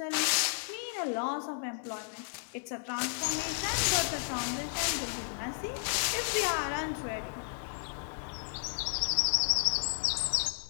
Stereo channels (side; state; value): right; silent; digital silence